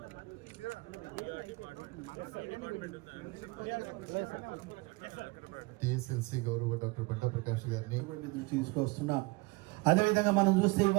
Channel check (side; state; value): left; quieter; 25.5 dB